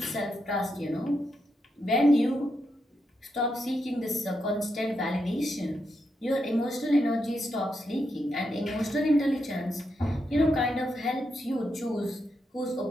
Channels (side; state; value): both; normal; correlation 0.83